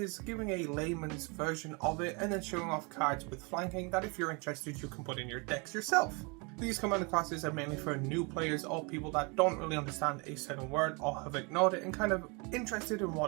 giving a layman's version of it, and then showing off cards with flanking that if you're interested, you can put in your decks yourself. These commander classes are mainly for new players or people that don't really understand a certain word or have ignored it and kind of interested in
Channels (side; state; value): left; quieter; 30.9 dB